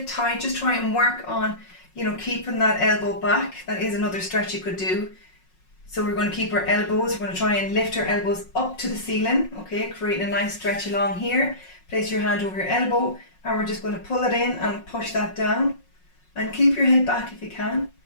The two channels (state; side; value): late; right; 5.5 ms